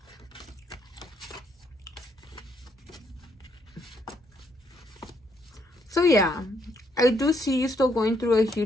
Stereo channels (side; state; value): both; normal; correlation 0.73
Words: So, yeah. I do see you still going through a